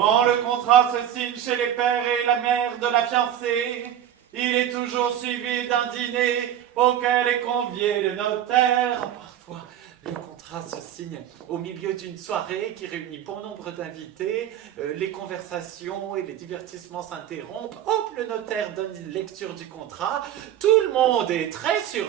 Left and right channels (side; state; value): left; quieter; 10.7 dB